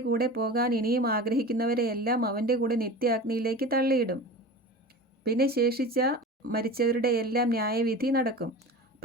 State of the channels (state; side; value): normal; both; correlation 0.33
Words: കൂടെ പോകാൻ ഇനിയും ആഗ്രഹിക്കുന്നവരെയെല്ലാം അവൻ്റെ കൂടെ നിത്യാഗ്നിയിലേക്ക് തള്ളിയിടും. പിന്നെ ശേഷിച്ച മരിച്ചവരുടെ എല്ലാം ന്യായവിധി നടക്കും.